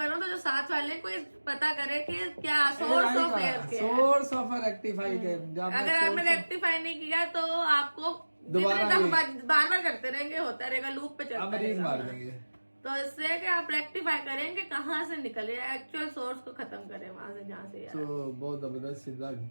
रहा हूँ तो जो साथ वाले को कोई पता करे कि क्या सोर्स ऑफ एयर रेक्टिफाई। अगर आपने रेक्टिफाई नहीं किया तो आपको बार बार करते रहेंगे, होता रहेगा, लूप पे चलता रहेगा, मार देंगे। तो इससे कि आप रेक्टिफाई करेंगे कहाँ से निकले, एक्चुअल सोर्स को खत्म करें वहां से जहाँ से। तो बहुत जबरदस्त,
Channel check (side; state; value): both; inverted; correlation -1.00